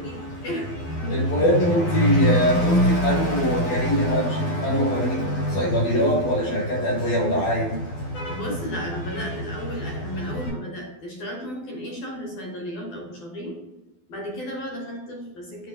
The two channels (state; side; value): late; right; 12 ms